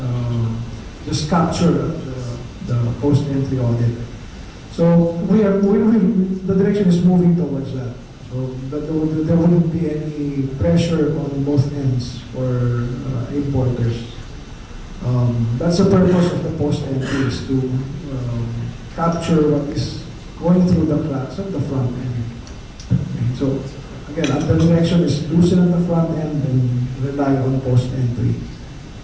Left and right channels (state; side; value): identical; both; correlation 1.00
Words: just capture the post-entry audit. So the direction is moving towards that. So that there wouldn't be any pressure on both ends for importers. That's the purpose of the post-entry, is to capture what is going through the cracks at the front end. Okay, so again, the direction is loosen at the front end and rely on post-entry.